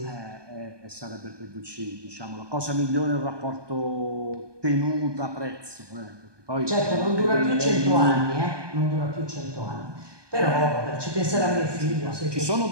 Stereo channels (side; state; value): left; late; 1.2 ms